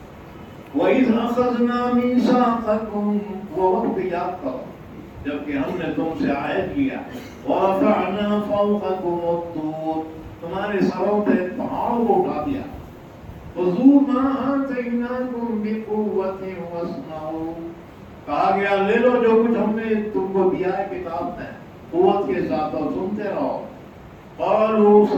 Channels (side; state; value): both; identical; correlation 1.00